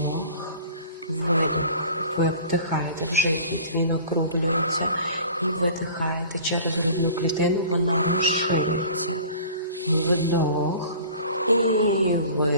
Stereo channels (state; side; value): inverted; both; correlation -0.44